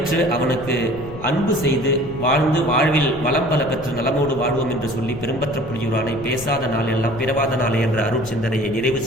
அவனுக்கு அன்பு செய்து வாழ்ந்து வாழ்வில் வளம் பல பெற்று நலமோடு வாழ்வோம் என்று சொல்லி பெரும்பற்ற புலியூரானை பேசாத நாள் எல்லாம் பிறவாத நாளே என்ற அருள் சிந்தனையை நிறைவு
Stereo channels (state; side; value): noise; left; rumble, 14 dB below the sound